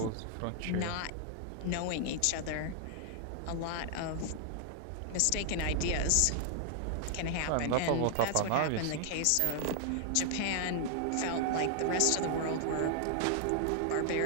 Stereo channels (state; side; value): different; both; correlation 0.00